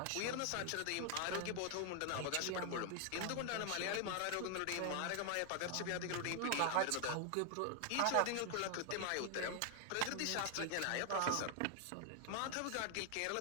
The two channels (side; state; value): both; different; correlation 0.00